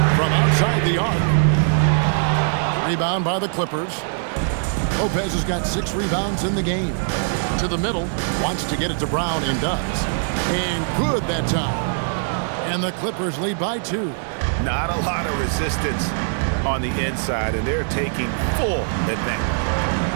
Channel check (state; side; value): silent; left; digital silence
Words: from outside the arc. Rebound by the Clippers. Lopez has got 6 rebounds in the game. To the middle, wants to get it to Brown and does. And good that time. And the Clippers lead by 2. Not a lot of resistance on the inside, and they're taking full advantage.